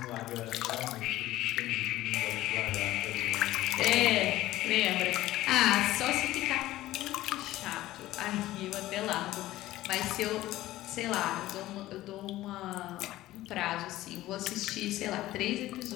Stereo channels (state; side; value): quieter; right; 15.8 dB